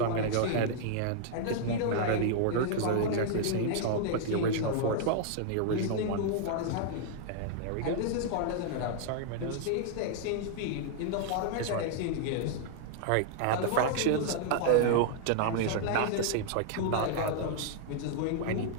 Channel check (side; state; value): both; different; correlation -0.01